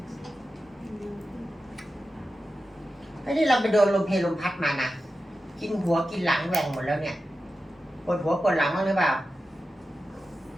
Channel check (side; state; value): both; normal; correlation 0.92